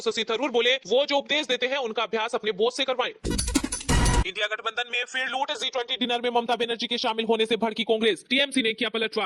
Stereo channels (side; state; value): both; identical; correlation 1.00